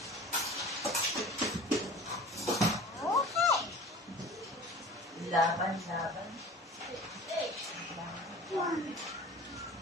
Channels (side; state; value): both; normal; correlation 0.40